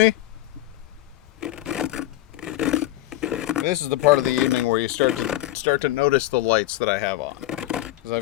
This is the part of the evening where you start to notice the lights that I have on. Because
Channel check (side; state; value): right; quieter; 15.5 dB